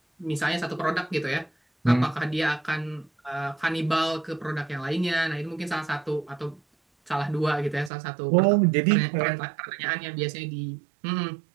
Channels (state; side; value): drops out; left; at 7.9 s